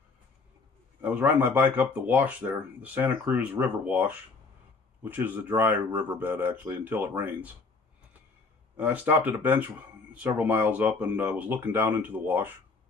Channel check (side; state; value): right; quieter; 4.1 dB